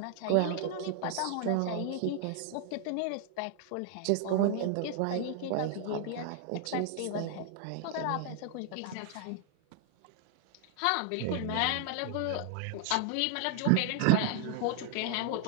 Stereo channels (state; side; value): different; both; correlation 0.00